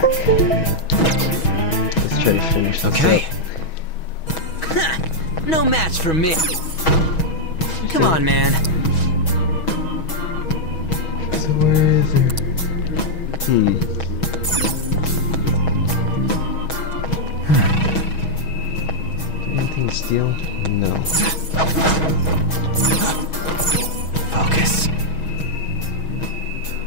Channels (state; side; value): late; right; 6.2 ms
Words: Let's try to finish this Okay. up. No match for me. Come on, man. So where is it? Anything to steal? No. Focus.